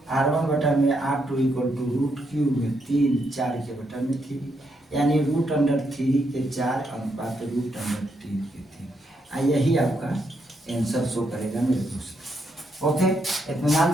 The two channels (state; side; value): normal; both; correlation 0.78